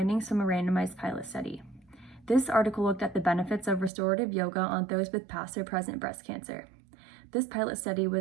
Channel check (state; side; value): drops out; left; at 3.9 s